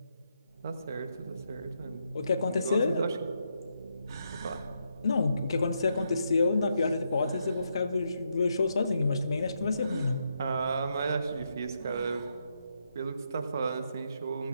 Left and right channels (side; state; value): both; inverted; correlation -0.80